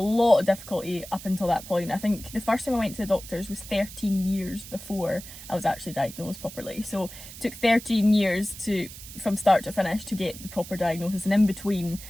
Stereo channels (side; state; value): right; noise; hiss, 14 dB below the sound